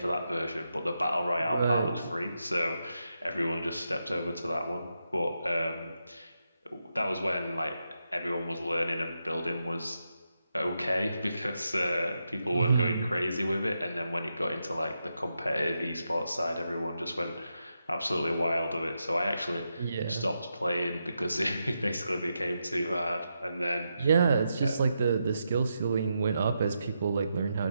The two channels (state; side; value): inverted; both; correlation -0.85